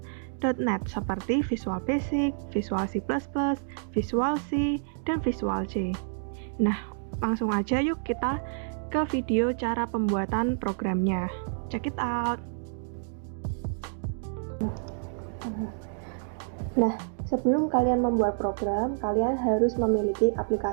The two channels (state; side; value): silent; left; digital silence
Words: .NET seperti Visual Basic, Visual C++, Visual C, dan Visual C. Nah, langsung aja yuk kita ke video cara pembuatan programnya. Check it out! Nah, sebelum kalian membuat program, kalian harus memiliki